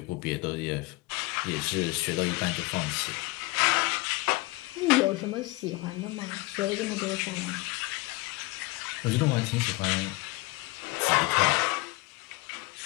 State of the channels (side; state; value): right; quieter; 22.7 dB